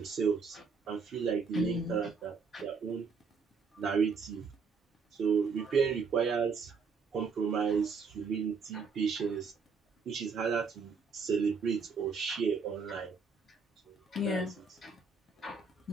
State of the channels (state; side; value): quieter; left; 5.0 dB